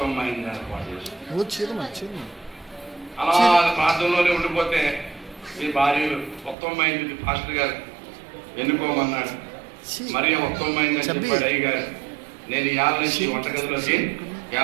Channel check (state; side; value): drops out; left; at 6.6 s